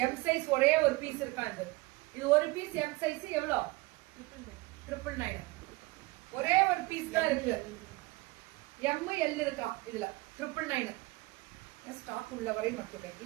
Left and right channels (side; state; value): left; quieter; 22.1 dB